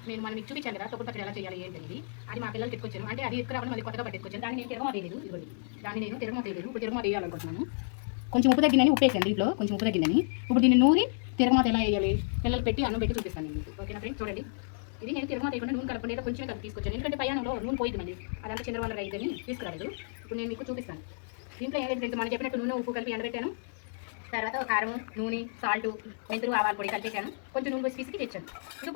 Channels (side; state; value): right; silent; digital silence